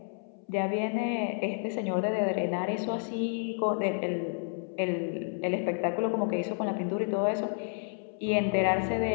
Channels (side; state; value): right; silent; 58 dB below the other